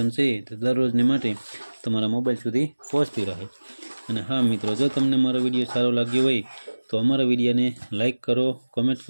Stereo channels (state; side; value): inverted; both; correlation -1.00